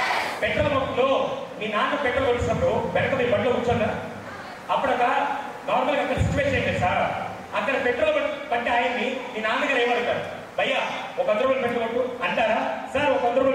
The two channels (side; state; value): both; identical; correlation 1.00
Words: Petrol bunk లో మీ నాన్న పెట్రోల్ కొట్టినప్పుడు వెనక మీ బండిలో కూర్చున్నా. అప్పుడు ఒక నార్మల్గా అక్కడ సిచ్యువేషన్ ఏంటి సార్, అక్కడ పెట్రోల్ పట్టి ఆయన్ని మీ నాన్నగారు ఏమడుగుతారు? భయ్యా ఒక 100 రూపాయలు పెట్టుకోండు అంటారా? సార్ ఒక 100